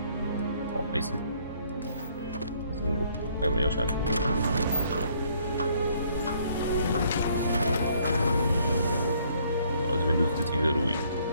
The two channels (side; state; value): both; inverted; correlation -0.65